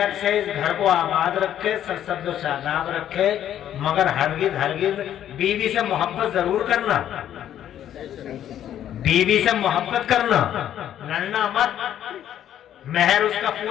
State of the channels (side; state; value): right; quieter; 10.9 dB